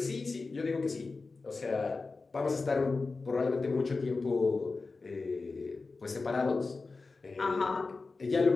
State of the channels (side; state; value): right; quieter; 3.9 dB